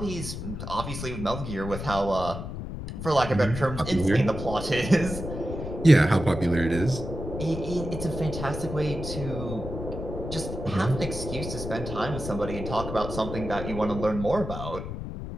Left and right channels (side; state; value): left; noise; rumble, 7 dB below the sound